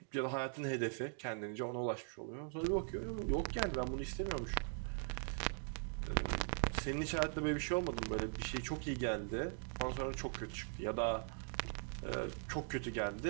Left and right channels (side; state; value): left; silent; 50 dB below the other